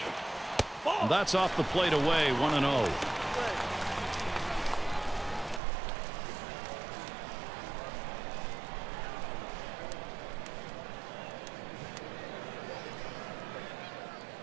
That's off the plate away, 1-0.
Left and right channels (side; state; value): left; drops out; at 5.6 s